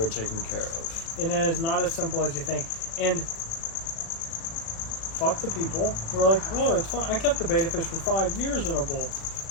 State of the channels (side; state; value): right; late; 36 ms